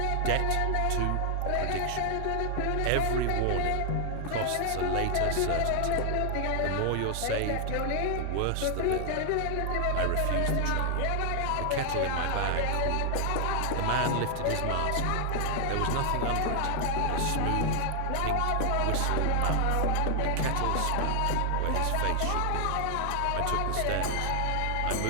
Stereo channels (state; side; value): different; both; correlation 0.00